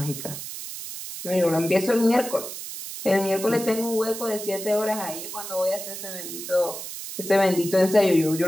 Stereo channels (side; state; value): right; noise; hiss, 9 dB below the sound